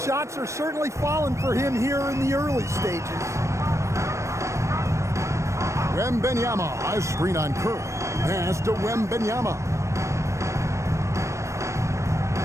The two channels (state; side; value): late; left; 0.14 ms